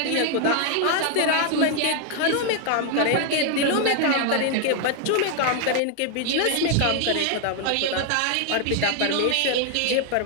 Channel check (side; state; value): both; different; correlation 0.00